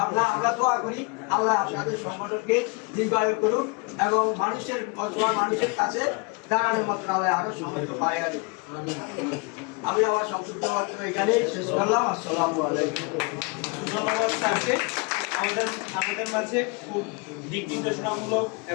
আমরা দোয়া করি আল্লাহ আপনাদের সংগঠনকে দীর্ঘায়ু করুক এবং মানুষের কাছে দাঁড়ানোর মতো আল্লাহ আরো সামর্থ্য পাইয়া দেব। আমি আমার সংক্ষিপ্ত বক্তব্য এখানে শেষ করলাম। আসসালামু আলাইকুম। ধন্যবাদ স্যারকে আমাদের মাঝে খুব দিক নির্দেশনামূলক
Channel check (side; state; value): right; quieter; 30.9 dB